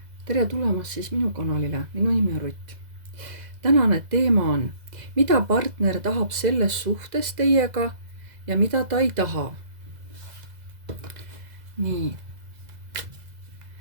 Tere tulemast siis minu kanalile, minu nimi on Rutt. Tänane teema on, mida partner tahab selles suhtes teiega ja mida ta ei taha. Nii.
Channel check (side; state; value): left; late; 2.0 ms